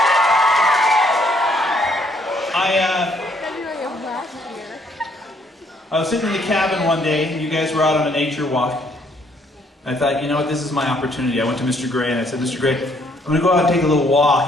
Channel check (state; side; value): normal; both; correlation 0.67